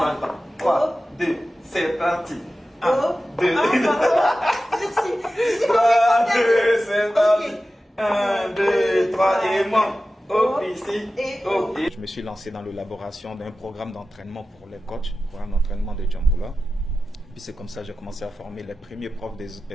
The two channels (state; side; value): normal; both; correlation 0.94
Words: le temps. 3, 2, c'est parti. 1, 2, 3, 2, c'est parti. 1, 2, 3, et moi. Hop, ici, hop. Je me suis lancé dans l'élaboration d'un programme d'entraînement pour les coachs, programme d'entraînement de Djamboula. Puis c'est comme ça que j'ai commencé à former les premiers profs de